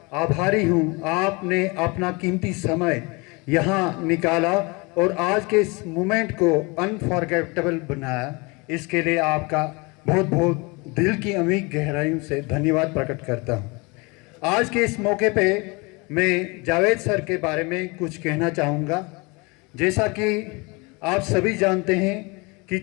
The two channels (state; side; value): quieter; right; 27.4 dB